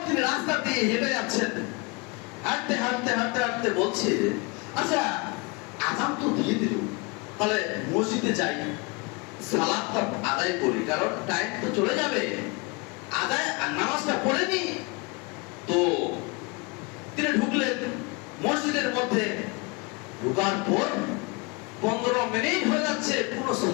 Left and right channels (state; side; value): quieter; right; 28.6 dB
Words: তিনি রাস্তা দিয়ে হেঁটে যাচ্ছেন। হাঁটতে হাঁটতে হাঁটতে হাঁটতে বলছে, আচ্ছা আযান তো দিয়ে দিল, তাহলে মসজিদে যাই, সালাতটা আদায় করি, কারণ টাইম তো চলে যাবে, আদায় নামাজটা পড়ে নি। তো তিনি ঢুকলেন মসজিদের মধ্যে। ঢোকার পর 15 মিনিট হয়ে যাচ্ছে, কোনো